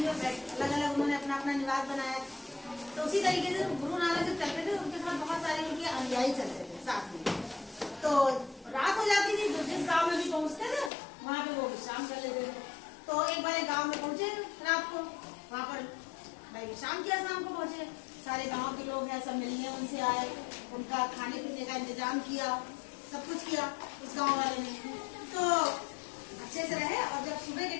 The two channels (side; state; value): right; drops out; at 10.9 s